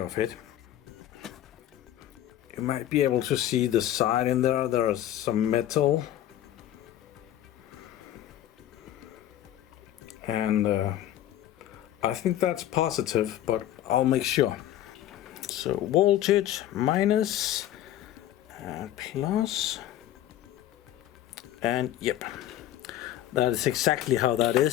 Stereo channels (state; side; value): quieter; right; 12.4 dB